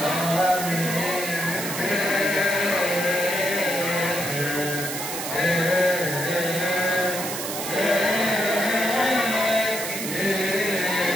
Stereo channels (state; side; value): noise; right; hiss, 5 dB below the sound